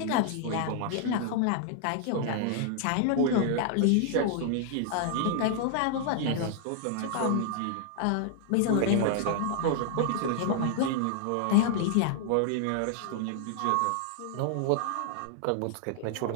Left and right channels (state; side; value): different; both; correlation -0.01